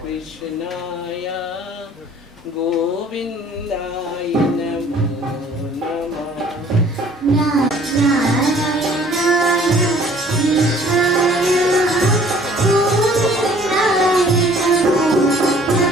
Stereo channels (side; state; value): both; normal; correlation 0.54